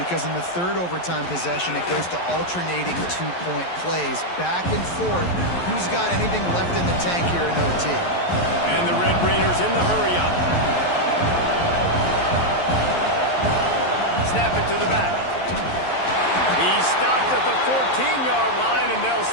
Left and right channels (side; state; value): right; late; 11 ms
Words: in the third overtime possession, it goes to alternating 2-point plays, back and forth. Who's got anything left in the tank here in OT? And the Red Raiders in the hurry-up. Snap it to the back. He stopped at the 14-yard line, and they'll